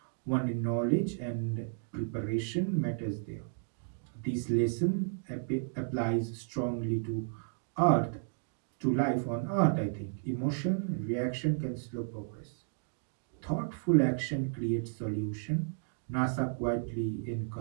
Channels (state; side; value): silent; left; digital silence